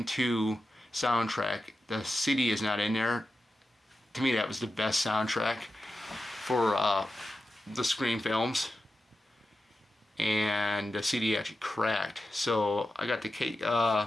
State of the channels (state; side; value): normal; both; correlation 0.91